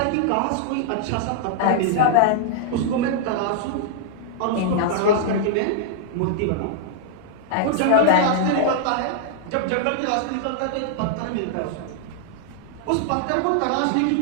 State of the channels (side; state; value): both; different; correlation -0.01